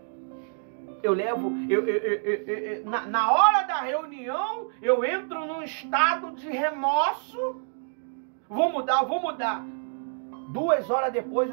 Na hora da reunião, eu entro num estado de remorso. Vou mudar. 2 horas depois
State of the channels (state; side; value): silent; left; digital silence